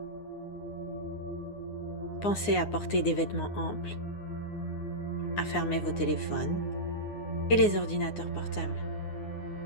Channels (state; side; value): late; right; 9.7 ms